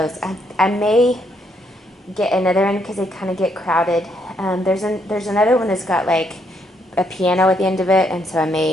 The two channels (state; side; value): normal; both; correlation 0.74